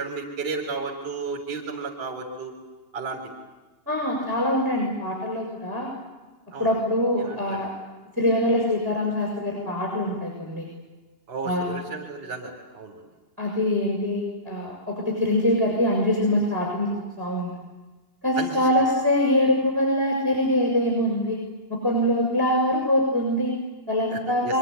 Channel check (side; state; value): left; late; 2.8 ms